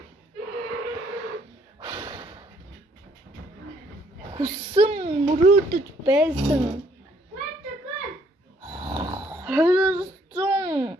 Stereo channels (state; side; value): normal; both; correlation 0.66